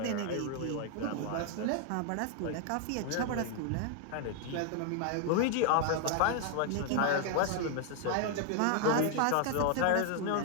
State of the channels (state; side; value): different; both; correlation 0.00